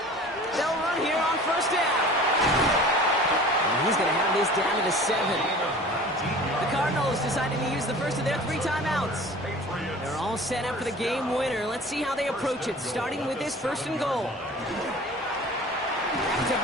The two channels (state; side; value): normal; both; correlation 0.43